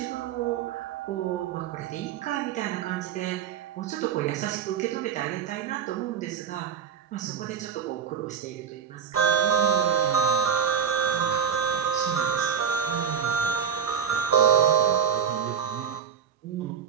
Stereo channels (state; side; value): quieter; left; 7.7 dB